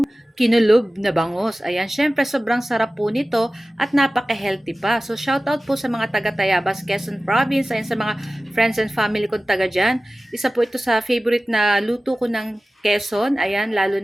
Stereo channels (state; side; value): normal; both; correlation 0.97